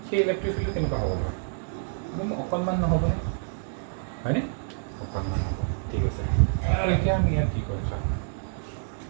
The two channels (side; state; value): left; silent; digital silence